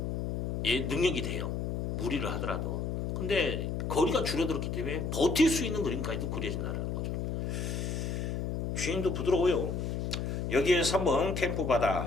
능력이 돼요. 무리를 하더라도. 근데 거리가 줄어들었기 때문에 버틸 수 있는 그림까지도 그려진다는 거죠. 주행도 부드러워요. 여기에 3번 캠프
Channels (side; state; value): left; noise; hum, 1 dB below the sound